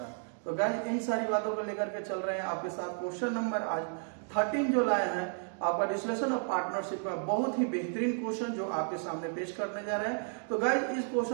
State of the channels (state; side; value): silent; left; 56 dB below the other